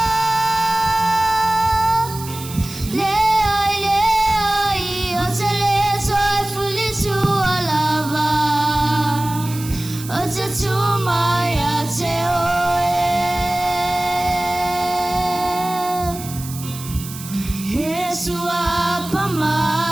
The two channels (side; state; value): right; noise; hiss, 13 dB below the sound